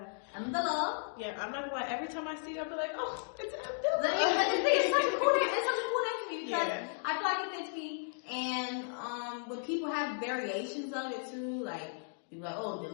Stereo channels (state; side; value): silent; right; digital silence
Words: Mdilla. Yeah, I'm not gonna lie. Every time I see it, I'll be like, oh, it's Mdilla. It's such a cool name. It's such a cool name to me because I feel like it fits me. And when people have variations of it too, like people like, oh,